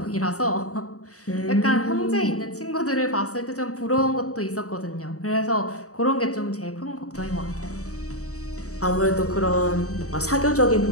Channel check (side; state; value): right; late; 0.66 ms